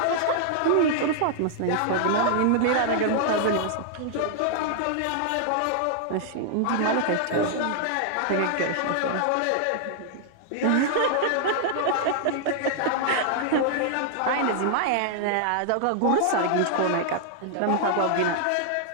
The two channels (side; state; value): both; different; correlation -0.01